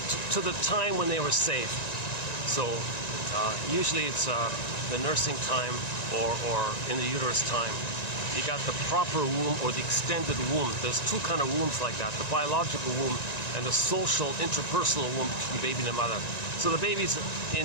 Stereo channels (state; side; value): late; right; 1.9 ms